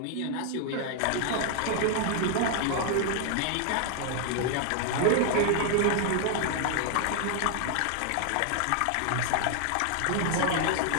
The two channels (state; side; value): different; both; correlation 0.00